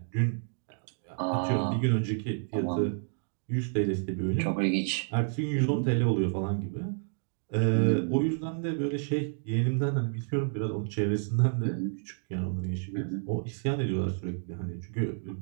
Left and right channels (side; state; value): left; silent; digital silence